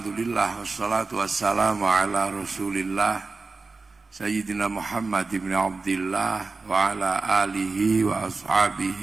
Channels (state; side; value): quieter; left; 4.0 dB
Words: wassalatu wassalamu ala rasulillah Sayyidina Muhammad ibn Abdillah wa ala alihi wa